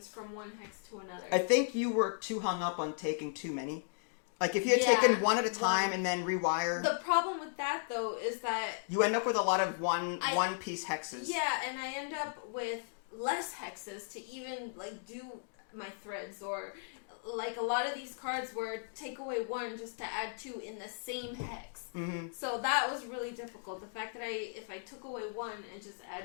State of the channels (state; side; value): silent; right; digital silence